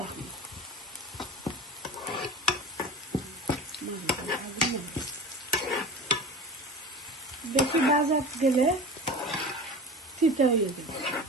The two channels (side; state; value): both; normal; correlation 0.34